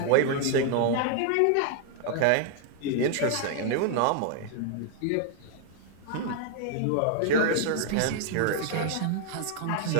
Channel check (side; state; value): both; different; correlation 0.00